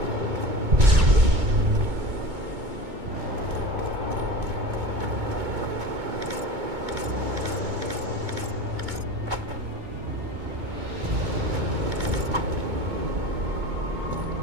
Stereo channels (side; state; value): left; late; 2.2 ms